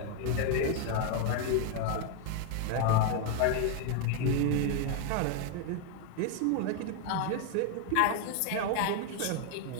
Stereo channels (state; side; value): different; both; correlation 0.00